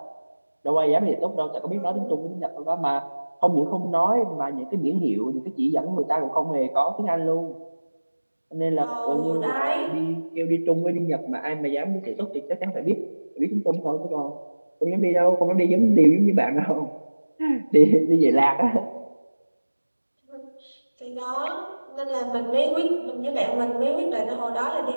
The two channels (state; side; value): inverted; both; correlation -1.00